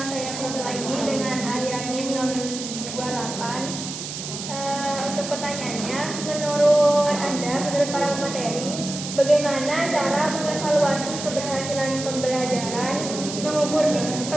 saya Putri lagi dengan akhiran NIM 028. Untuk pertanyaannya, menurut Anda, menurut para pemateri, bagaimana cara mengevaluasi keberhasilan pembelajaran mengukur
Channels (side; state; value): right; noise; hiss, 7 dB below the sound